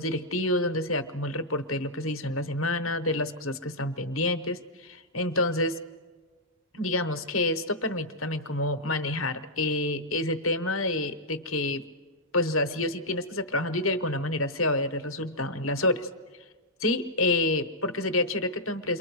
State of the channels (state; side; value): normal; both; correlation -0.09